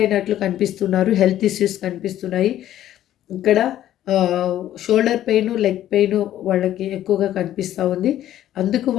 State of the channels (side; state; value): right; quieter; 12.4 dB